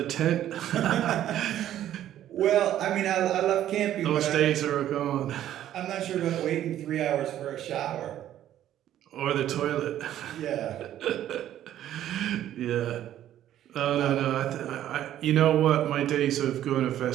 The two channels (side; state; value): left; quieter; 11.9 dB